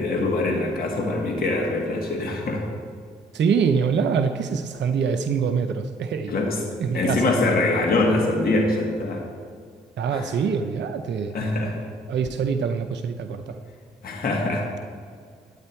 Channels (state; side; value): normal; both; correlation 0.57